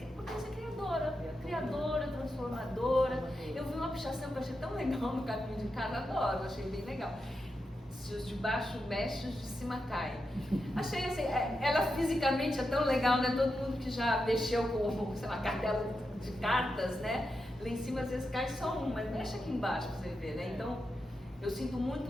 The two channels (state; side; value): normal; both; correlation 0.87